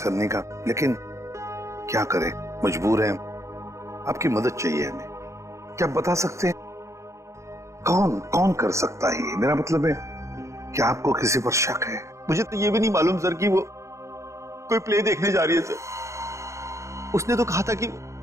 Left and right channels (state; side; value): late; left; 0.14 ms